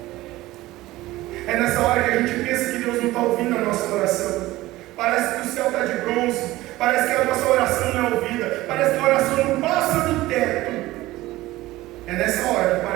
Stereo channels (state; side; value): quieter; left; 17.6 dB